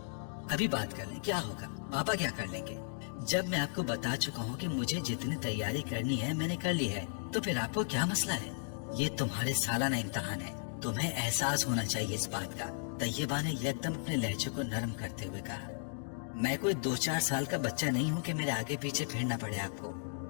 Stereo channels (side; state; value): right; silent; digital silence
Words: अभी बात कर लें, क्या होगा? पापा क्या कर लेंगे? जब मैं आपको बता चुका हूँ कि मुझे जितनी तैयारी करनी है मैंने कर ली है, तो फिर आपको क्या मसला है? ये तुम्हारे सालाना इम्तिहान है, तुम्हें एहसास होना चाहिए इस बात का। तैयबा ने एकदम अपने लहजे को नरम करते हुए कहा। मैं कोई 2-4 साल का बच्चा नहीं हूँ कि मेरे आगे पीछे फिरना पड़े आपको।